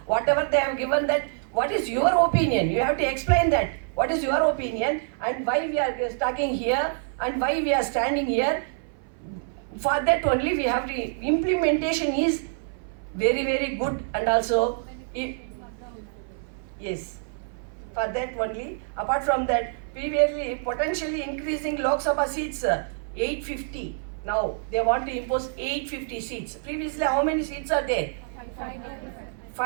whatever they have given that. What is your opinion? You have to explain that. What is your opinion and why we are talking here and why we are standing here? For that only we have to implementation is very good, and also yes. For that only, apart from that, previously potentially increasing Lok Sabha seats 850. Now they want to impose 850 seats. Previously how many seats are there?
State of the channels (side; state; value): left; silent; 56 dB below the other